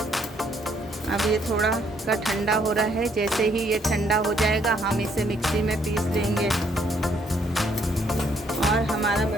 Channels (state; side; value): normal; both; correlation 0.69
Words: अब ये थोड़ा का ठंडा हो रहा है। जैसे ही ये ठंडा हो जाएगा हम इसे मिक्सी में पीस लेंगे और हमारा